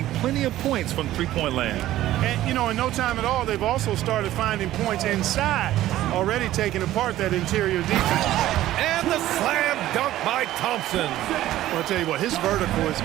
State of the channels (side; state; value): left; quieter; 14.3 dB